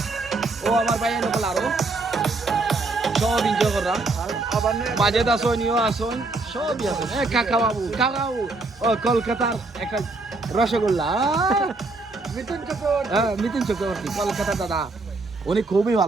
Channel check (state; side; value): quieter; left; 3.4 dB